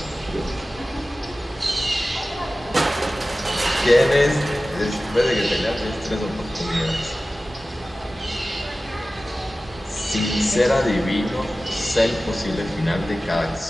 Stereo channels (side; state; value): both; normal; correlation 0.96